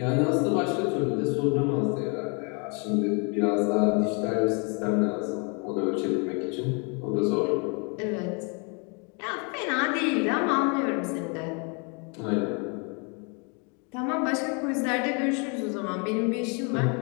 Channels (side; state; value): right; quieter; 34.5 dB